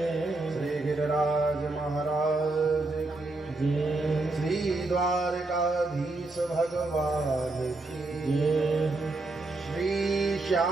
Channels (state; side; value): quieter; left; 3.1 dB